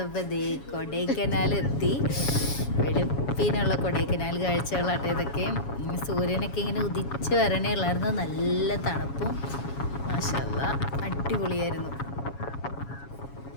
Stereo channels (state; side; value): late; right; 7.2 ms